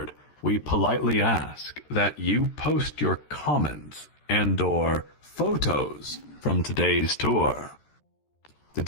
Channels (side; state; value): right; late; 13 ms